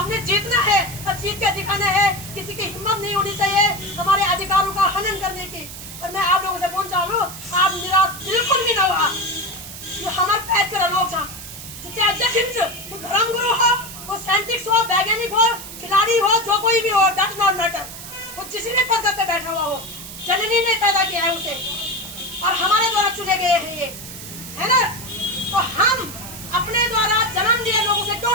जीतना है और जीत के दिखाना है। किसी की हिम्मत नहीं होनी चाहिए हमारे अधिकारों का हनन करने की। और मैं आप लोगों से बोलना चाहूँ आप निराश बिल्कुल भी ना हुआ। जो हमारे पैद कर लोग चाहे अध्यक्ष वो धर्मगुरु हो, वो साइंटिस्ट हो, वैज्ञानिक हो, खिलाड़ी हो, जो कोई भी हो, डट नॉट मैटर, वो किसी भी पद पे बैठा हुआ हो, जननी ने पैदा किया है उसे और हमारे द्वारा चुने गए हैं ये, है ना? तो हम अपने द्वारा जन्म दिए लोगों से क्यों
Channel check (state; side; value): noise; right; hiss, 12 dB below the sound